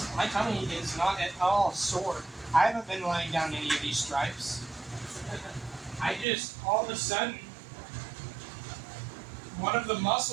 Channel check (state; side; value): drops out; left; at 6.2 s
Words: tummy is not at all sore. I haven't been laying down any of these stripes. I just, all of a sudden, one of the